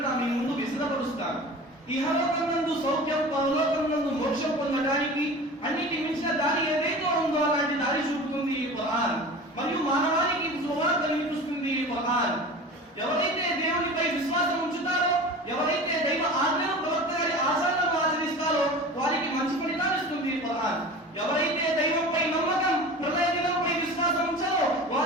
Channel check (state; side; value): normal; both; correlation 0.36